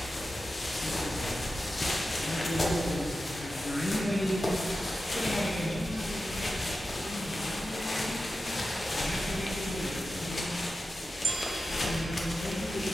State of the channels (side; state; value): both; normal; correlation 0.92